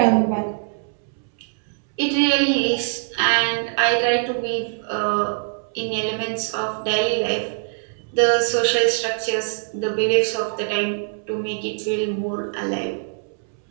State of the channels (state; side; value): silent; left; 64 dB below the other